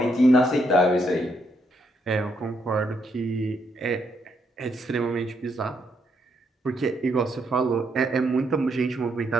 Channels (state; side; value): normal; both; correlation 0.76